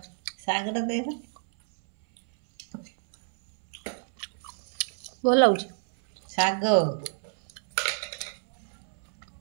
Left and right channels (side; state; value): left; silent; 59 dB below the other